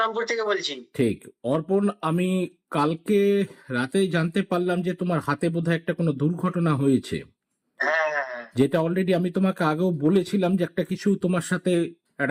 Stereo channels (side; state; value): both; identical; correlation 1.00